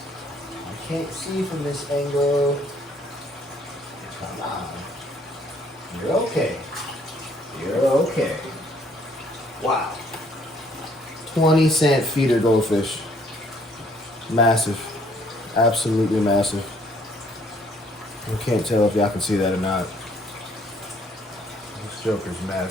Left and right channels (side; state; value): both; normal; correlation 0.63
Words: I can't see from this angle. Come on. You're okay. You're okay. Wow. 20-cent feeder goldfish. Massive. Absolutely massive. I can't tell if y'all can see that or not. This joker's